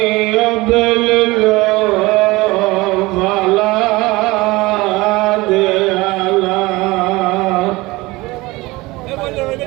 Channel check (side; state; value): left; quieter; 21.5 dB